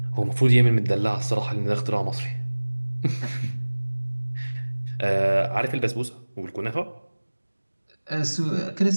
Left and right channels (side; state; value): both; inverted; correlation -1.00